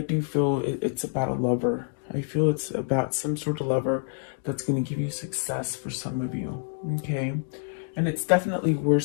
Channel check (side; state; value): right; silent; digital silence